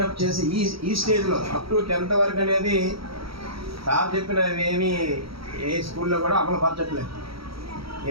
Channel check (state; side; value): late; left; 0.75 ms